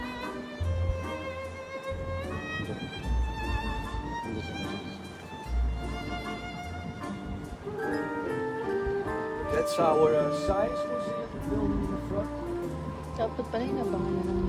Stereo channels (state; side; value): identical; both; correlation 1.00